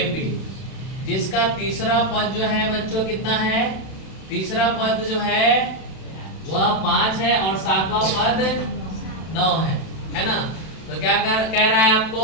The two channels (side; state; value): right; late; 32 ms